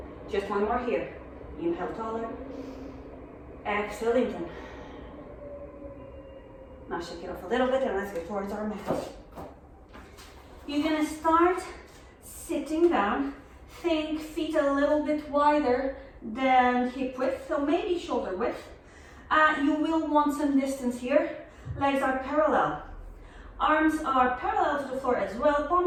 Just one more here. Inhale taller. Exhale, lengthen. Now shake it off a little bit and let's get towards our mat. You're gonna start sitting down. Think feet a little bit wider than hip width, so maybe shoulder width. You will want some distance here. Legs are parallel. Arms are parallel to the floor as well.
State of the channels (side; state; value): both; identical; correlation 1.00